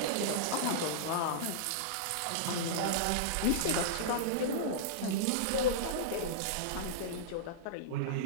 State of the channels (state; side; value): different; both; correlation -0.03